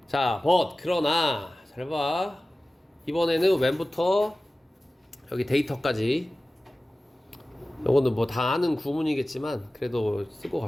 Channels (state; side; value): normal; both; correlation 0.96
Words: 자 but 그러나 잘 봐. 이번에는 when부터 여기 데이터까지 요거는 뭐 다 아는 구문이겠지만 그래도 쓰고